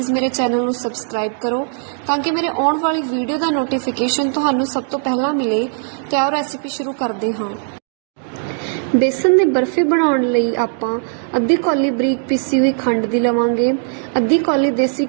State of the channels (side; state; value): left; silent; 67 dB below the other